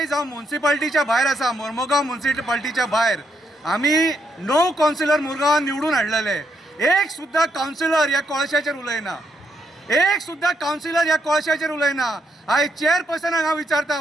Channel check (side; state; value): both; normal; correlation 0.78